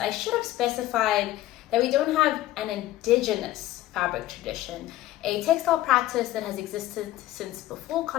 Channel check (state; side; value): quieter; right; 15.1 dB